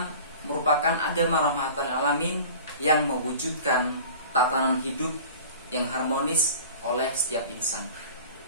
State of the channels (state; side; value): inverted; both; correlation -0.41